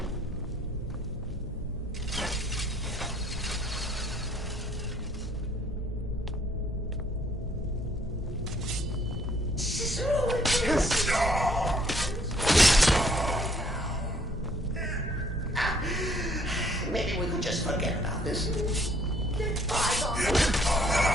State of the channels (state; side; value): normal; both; correlation 0.63